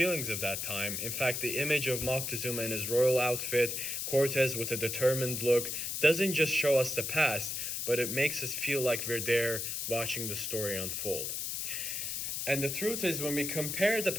of that time. In fact, the image of Moctezuma in his royal outfit, Cortes with a determined look, doesn't just show us the past, but it makes us feel like we're there watching the story unfold. And the truth is, when we compare the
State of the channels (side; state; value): left; noise; hiss, 3 dB below the sound